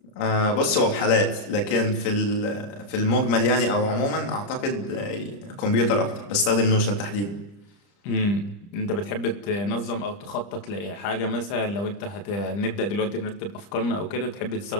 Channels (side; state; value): right; late; 30 ms